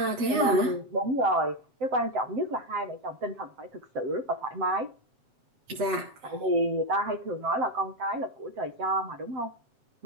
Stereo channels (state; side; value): late; left; 7.9 ms